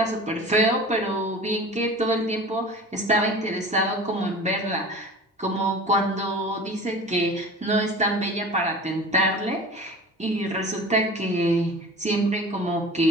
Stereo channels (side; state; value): both; normal; correlation 0.38